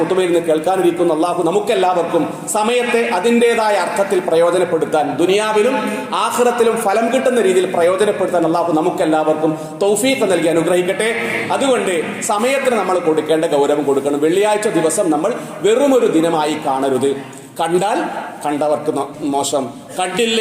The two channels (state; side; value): identical; both; correlation 1.00